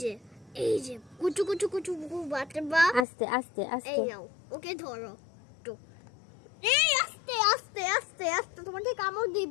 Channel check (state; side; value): drops out; right; at 3.1 s